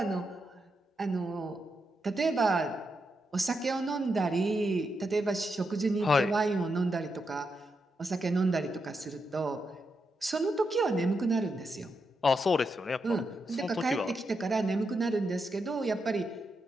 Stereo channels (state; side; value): normal; both; correlation 0.84